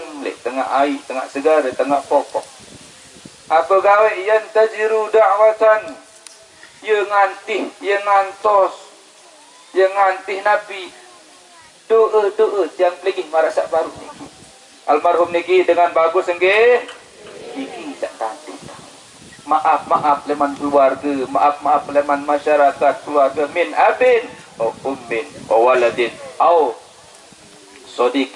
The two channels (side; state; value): both; identical; correlation 1.00